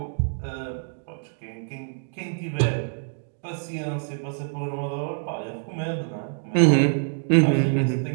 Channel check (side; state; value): left; silent; 61 dB below the other